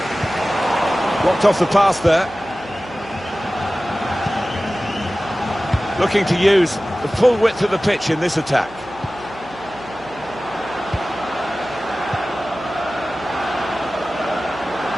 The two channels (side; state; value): right; noise; hum, 20 dB below the sound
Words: Blocked off the pass there. Looking to use the full width of the pitch in this attack.